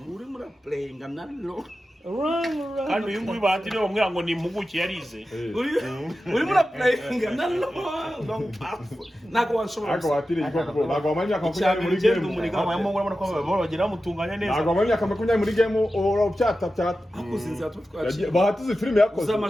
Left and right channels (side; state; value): both; normal; correlation 0.93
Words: uri muri playing nalo kandi uyu nguyu batiriwe bamwira ngo ni impuguke yarize uri muri playing nalo nako wanshobora ako batiriye ko nako amanya ko kunyari muri game abamo ngora ko bagira mutunganya neza nako amanya ko kunyari muri game uracyata akuzinze atutwaje bahatize filime yakoze